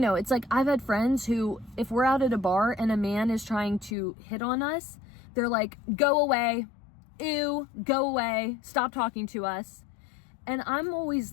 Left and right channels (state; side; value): drops out; right; at 3.9 s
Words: it's like, I've had friends who, if we're out at a bar and a man is trying to hit on us, they're like, go away. Ew, go away. Stop talking to us. And I'm always